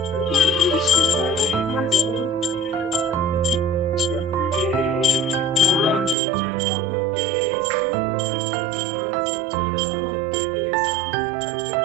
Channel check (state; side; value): drops out; left; at 6.2 s